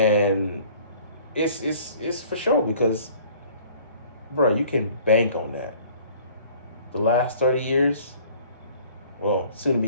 it's for sure because, bro, you can bank on that. The last 30 years, well, soon to be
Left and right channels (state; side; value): inverted; both; correlation -0.53